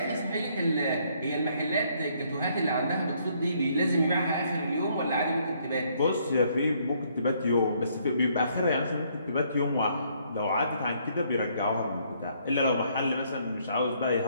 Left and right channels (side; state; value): both; inverted; correlation -0.68